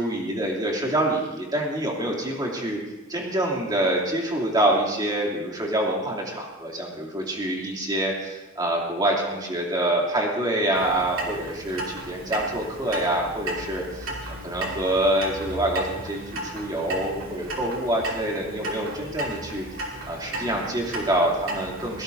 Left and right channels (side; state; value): both; normal; correlation 0.34